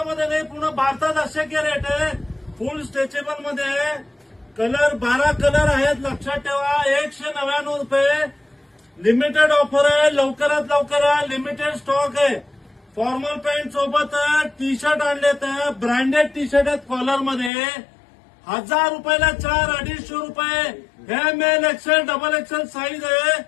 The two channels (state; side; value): drops out; right; at 17.5 s